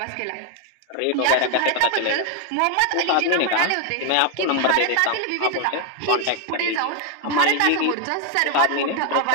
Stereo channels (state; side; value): different; both; correlation 0.01